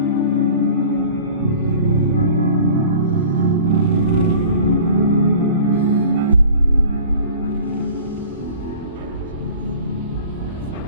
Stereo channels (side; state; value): both; inverted; correlation -0.44